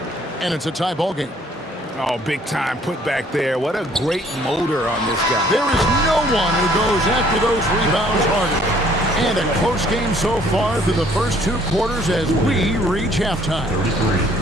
And it's a tie ball game. Oh, big time putback there. What a great motor on this guy. There is no one who goes after those rebounds harder. And a close game so far through the first 2 quarters as we reach halftime.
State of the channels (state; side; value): normal; both; correlation 0.60